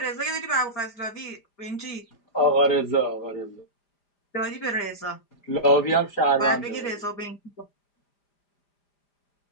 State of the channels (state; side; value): late; right; 5.0 ms